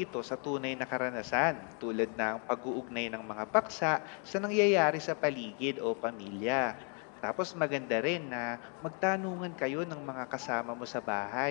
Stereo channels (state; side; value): quieter; right; 39.7 dB